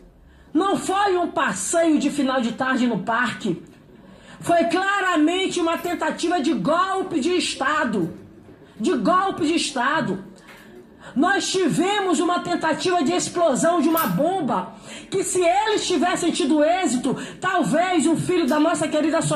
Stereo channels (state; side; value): identical; both; correlation 1.00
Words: não foi um passeio de final de tarde no parque. Foi claramente uma tentativa de golpe de Estado. De golpe de Estado. Nós tivemos uma tentativa de explosão de uma bomba, que, se eles tivessem tido êxito, talvez o filho da nossa querida